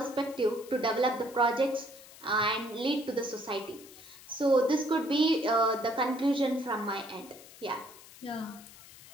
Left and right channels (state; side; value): noise; left; hiss, 19 dB below the sound